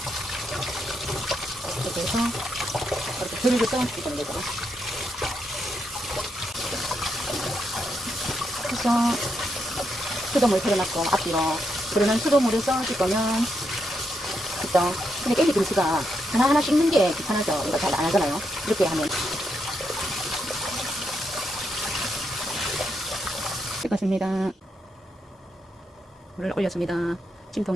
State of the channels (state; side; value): normal; both; correlation 0.81